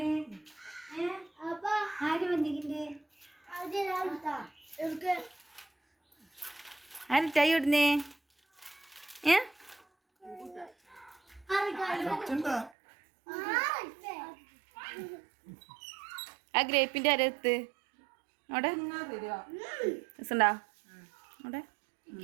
ആര് ചായ ഇടുന്നേ? ആ ഗ്രേപ്പിന്റെ അരത്ത് അവിടെ രസണ്ടാ? അവിടെ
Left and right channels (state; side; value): drops out; left; at 12.7 s